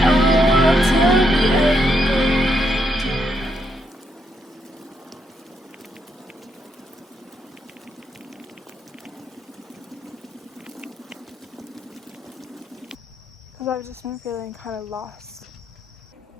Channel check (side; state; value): both; normal; correlation 0.78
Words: because I've just been feeling kind of lost.